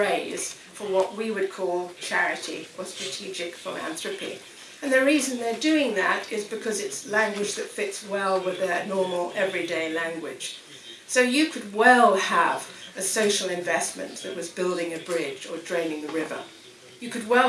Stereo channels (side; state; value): both; identical; correlation 1.00